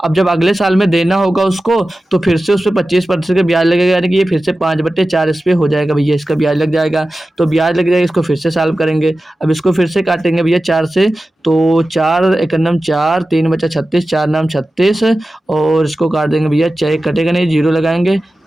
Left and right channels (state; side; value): normal; both; correlation 0.95